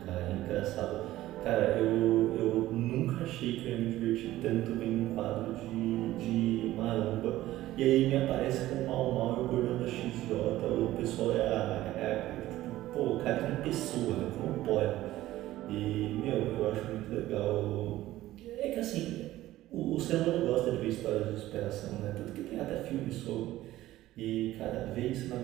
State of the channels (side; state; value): left; quieter; 15.4 dB